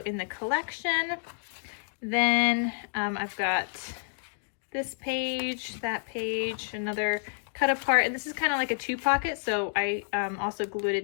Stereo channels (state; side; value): silent; right; digital silence